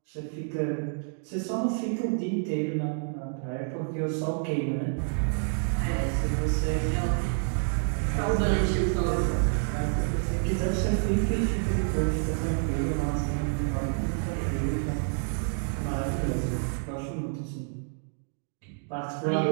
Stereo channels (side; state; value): left; silent; 59 dB below the other